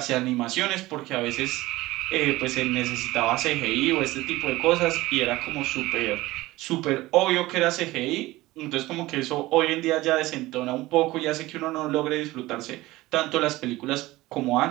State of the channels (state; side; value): quieter; left; 18.6 dB